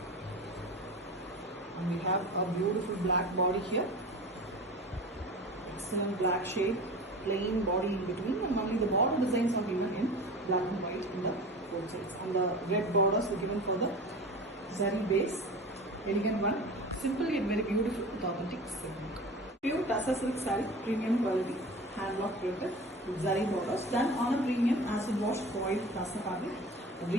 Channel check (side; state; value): both; normal; correlation 0.35